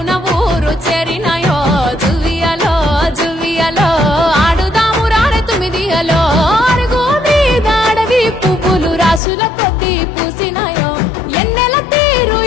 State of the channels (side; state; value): right; drops out; at 9.2 s